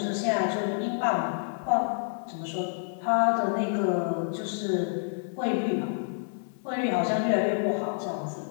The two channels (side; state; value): right; silent; digital silence